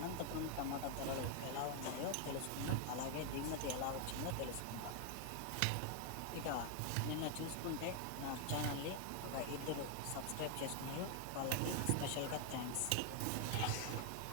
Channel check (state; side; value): different; both; correlation 0.01